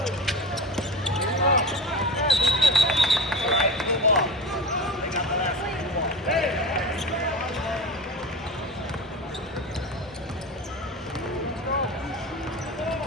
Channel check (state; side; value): normal; both; correlation 0.27